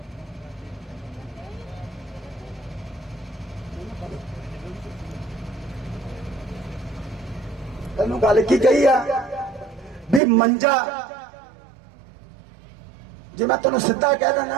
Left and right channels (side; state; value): left; drops out; at 10.2 s